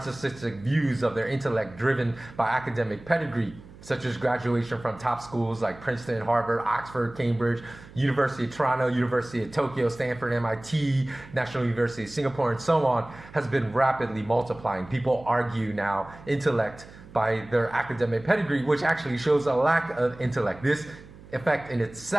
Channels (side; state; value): right; noise; hum, 20 dB below the sound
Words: views of their intellect driven by academic pedigree such as graduation from top schools like Princeton, Harvard, Oxford, Cambridge, University of Toronto, University of Tokyo, Stanford, MIT, National University of Singapore, and so on, has been rapidly multiplying. People argue now intellect by their academic pedigree, which actually shows a lack of intellect. This effect in